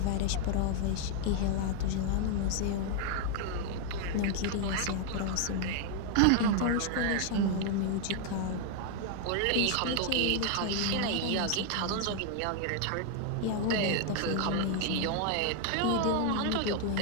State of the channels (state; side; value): different; both; correlation 0.00